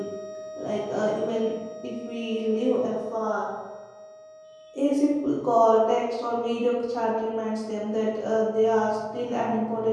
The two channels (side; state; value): both; identical; correlation 1.00